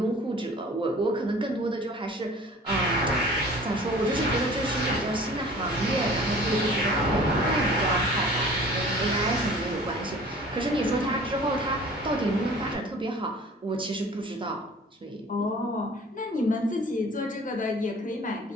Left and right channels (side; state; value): both; normal; correlation 0.47